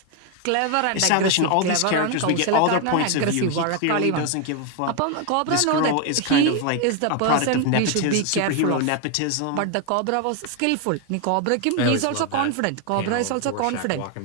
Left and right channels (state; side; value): different; both; correlation 0.01